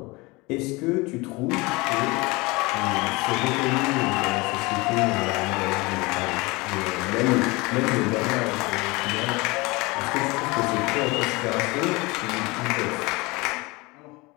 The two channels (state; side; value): quieter; right; 24.1 dB